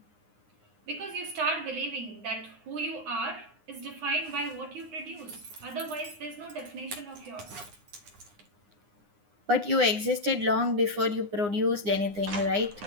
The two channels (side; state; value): left; late; 9.7 ms